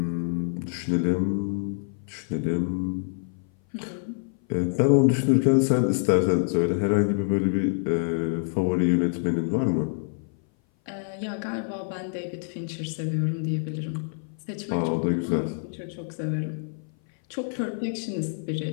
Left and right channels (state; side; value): silent; right; 57 dB below the other